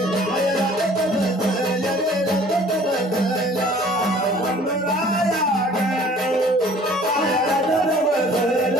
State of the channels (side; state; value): both; normal; correlation 0.52